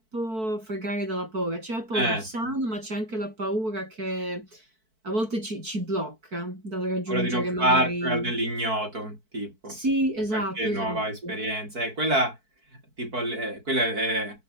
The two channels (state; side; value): late; left; 4.5 ms